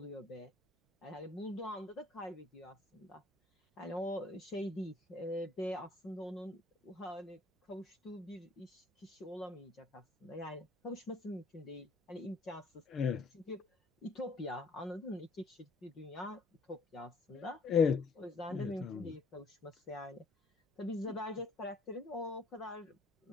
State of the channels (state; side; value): quieter; right; 3.4 dB